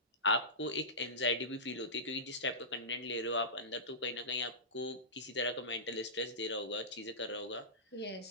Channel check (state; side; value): normal; both; correlation -0.19